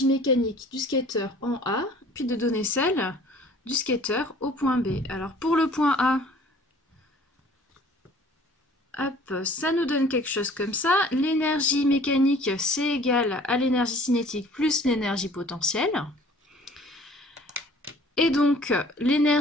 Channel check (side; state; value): both; normal; correlation 0.51